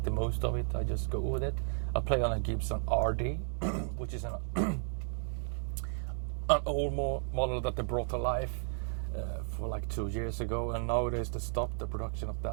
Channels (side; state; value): left; silent; digital silence